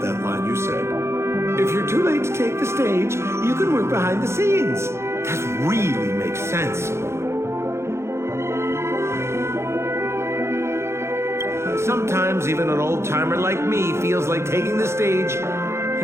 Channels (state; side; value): late; left; 0.13 ms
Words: that line you said. If you're too late to take the stage, you can work behind the scenes. That really makes sense. Sometimes even an old-timer like me feels like taking the stage